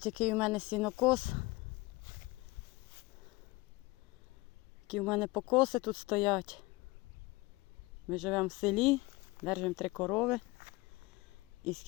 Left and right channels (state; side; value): quieter; right; 22.1 dB